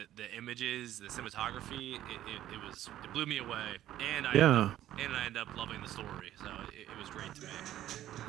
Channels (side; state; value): left; quieter; 12.9 dB